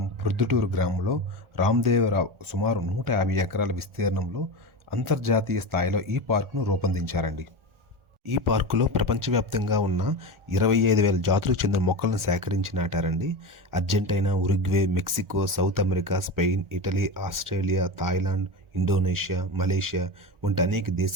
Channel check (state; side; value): late; left; 1.4 ms